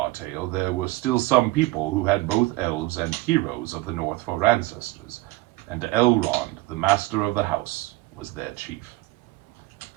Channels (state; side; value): quieter; left; 19.9 dB